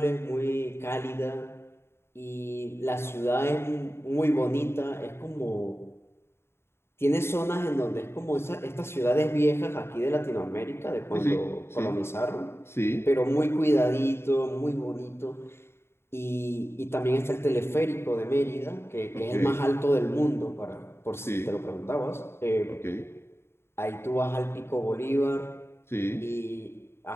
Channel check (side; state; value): right; late; 0.12 ms